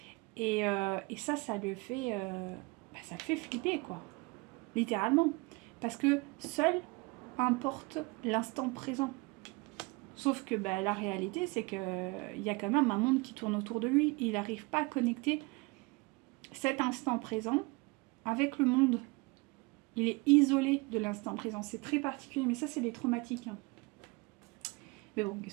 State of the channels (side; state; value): left; quieter; 26.4 dB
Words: Et ça le fait, ça le fait flipper, quoi. Littéralement. Parce que seul importe l'instant présent. Sauf que la réalité, c'est qu'il y a quand même un monde qui tourne autour de lui. Il n'arrive pas à connecter cet instant présent avec le monde. Il est isolé de l'instant présent. C'est très particulier, mais ça, c'est des traumatiques. Hein. Mais bon,